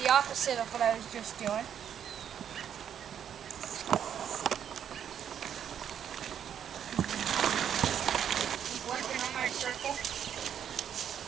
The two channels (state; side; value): quieter; left; 8.9 dB